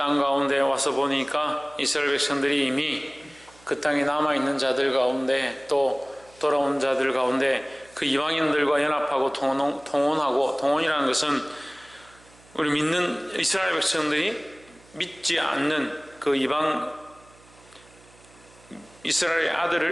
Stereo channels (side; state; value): right; noise; hum, 27 dB below the sound